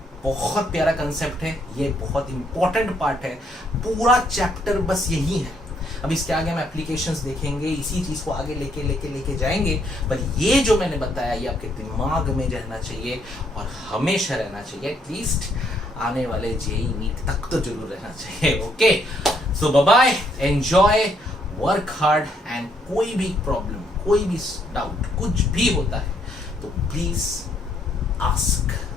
बहुत प्यारा कंसेप्ट है, ये बहुत इंपॉर्टेंट पार्ट है, पूरा चैप्टर बस यही है। अब इसके आगे हम एप्लीकेशंस देखेंगे, इसी चीज को आगे लेके जाएंगे, पर ये जो मैंने बताया ये आपके दिमाग में रहना चाहिए और हमेशा रहना चाहिए, एटलीस्ट आने वाले JEE नीट तक तो जरूर रहना चाहिए। Okay, so bye bye, enjoy, work hard, and कोई भी प्रॉब्लम, कोई भी डाउट, कुछ भी होता है तो प्लीज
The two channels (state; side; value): normal; both; correlation 0.71